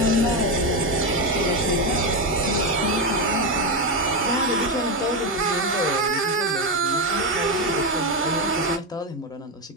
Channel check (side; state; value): both; normal; correlation 0.11